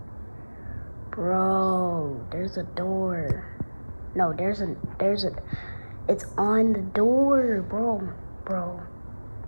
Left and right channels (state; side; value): inverted; both; correlation -1.00